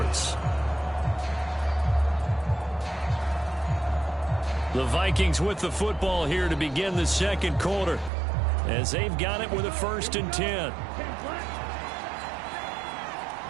The Vikings with the football here to begin the second quarter as they've got it with a 1st and 10.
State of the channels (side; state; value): left; drops out; at 8.1 s